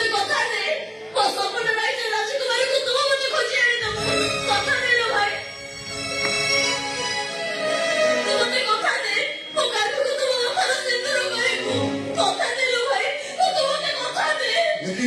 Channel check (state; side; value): identical; both; correlation 1.00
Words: কথা দে ও সপন রাইতে রাজকুমারী কো তুমি মতে খোঁজে আনি দাও কথা দেলো ভাই তোমাদের কথা দে ও কালকে তুমি আমার সিন্দুর করিবো কথা দেলো ভাই ও তোমাদের কথা দে